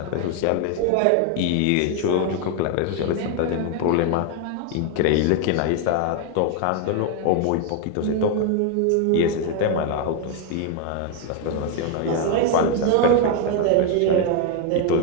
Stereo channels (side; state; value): both; different; correlation 0.01